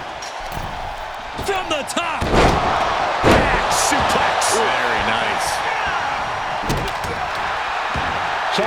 From the top. Back suplex. Very nice.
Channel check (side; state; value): both; identical; correlation 1.00